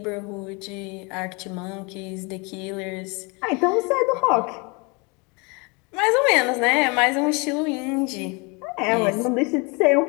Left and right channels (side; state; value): right; quieter; 30.1 dB